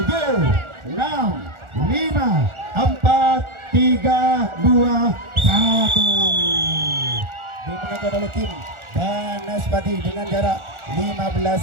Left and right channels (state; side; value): late; left; 1.4 ms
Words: 6, 5, 4, 3, 2, 1. Dimenangkan oleh tim Banaspati dengan jarak 15